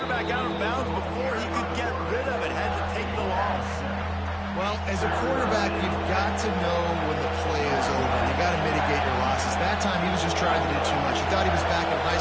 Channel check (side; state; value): both; identical; correlation 1.00